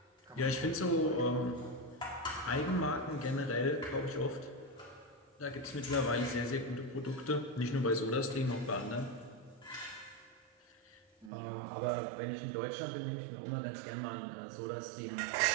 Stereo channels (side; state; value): left; drops out; at 11.3 s